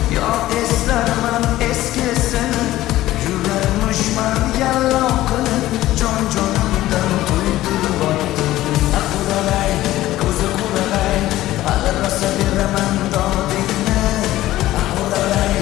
yo eslarman eskisini, yurarmushman yallo qilib jon-jonimdan to'ydirib o'tdi. Quralay, ko'zi quralay, hali rosa beraman dodingni. Quralay,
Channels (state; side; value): quieter; right; 15.4 dB